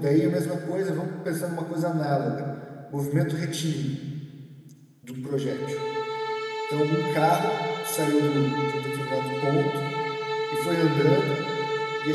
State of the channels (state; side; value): identical; both; correlation 1.00